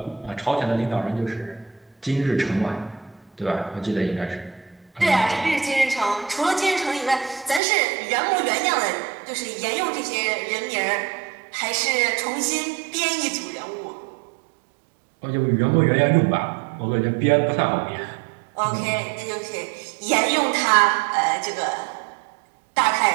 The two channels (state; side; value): drops out; left; at 7.6 s